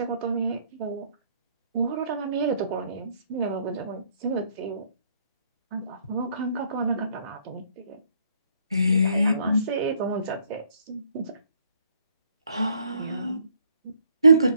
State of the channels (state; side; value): inverted; both; correlation -0.67